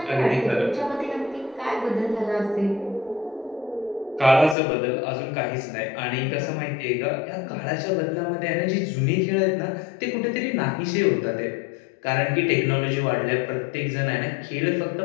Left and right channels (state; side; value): drops out; right; at 4.5 s